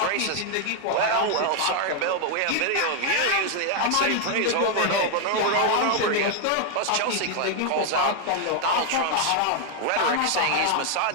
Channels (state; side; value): different; both; correlation 0.00